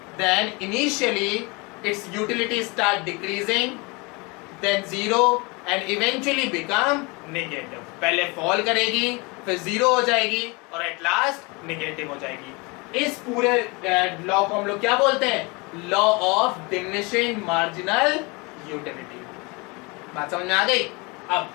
then initially its utility start decreasing, then zero and eventually become negative. पहले fall करेगी, फिर zero हो जाएगी और at last negative हो जाएगी। इस पूरे लॉ को हम लोग क्या बोलते हैं? Law of diminishing marginal utility. बात समझ में आ गई?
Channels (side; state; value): right; quieter; 27.7 dB